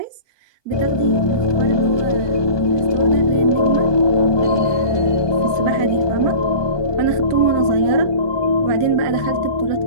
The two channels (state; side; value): late; right; 1.2 ms